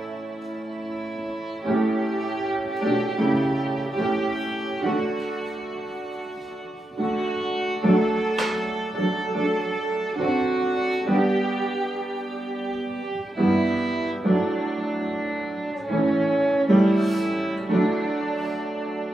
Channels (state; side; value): normal; both; correlation 0.88